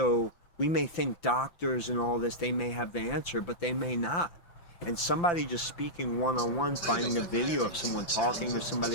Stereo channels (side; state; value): right; late; 5.8 ms